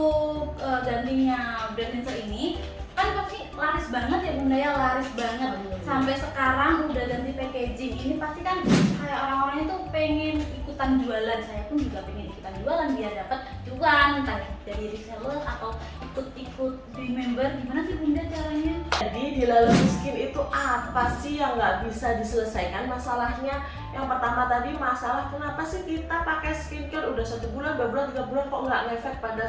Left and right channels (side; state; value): both; identical; correlation 1.00